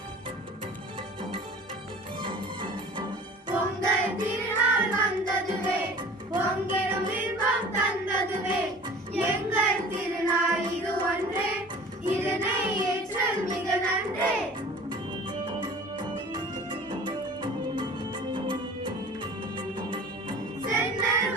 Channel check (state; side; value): normal; both; correlation 0.43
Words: பொங்கல் திருநாள் வந்ததுவே பொங்கிடும் இன்பம் தந்ததுவே எங்கள் திருநாள் இது ஒன்றே இதனை ஏற்றல் மிக நன்றே. சென்னல்